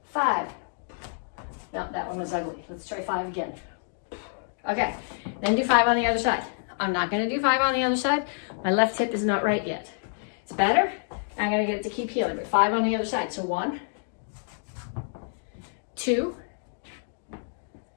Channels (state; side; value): silent; right; digital silence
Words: 5. No, that one was ugly. Let's try 5 again. Okay, then do 5 on the other side. I'm not gonna do 5 on the other side. My left hip is not right yet. It's better. I'm gonna get it to keep healing, but 5 on the other side. So 1, 2,